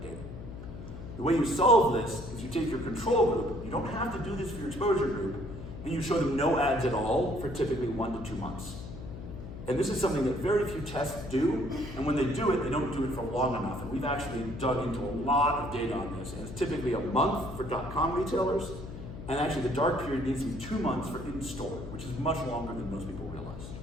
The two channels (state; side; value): noise; left; hum, 10 dB below the sound